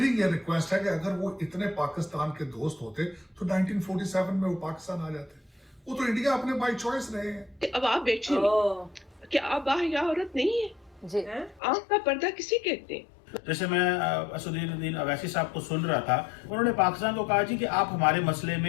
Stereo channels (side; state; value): right; drops out; at 11.6 s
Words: ये रिक्वेस्ट है कि अगर वो इतने पाकिस्तान के दोस्त होते तो 1947 में वो पाकिस्तान आ जाते। वो तो इंडिया अपने बाय चॉइस रहे हैं। अब आप बैठिए, क्या आप बाहया औरत नहीं है जी? आंख का पर्दा किसे कहते हैं? जैसे मैं असदुद्दीन अवैसी साहब को सुन रहा था, उन्होंने पाकिस्तान को कहा जी कि आप हमारे मसले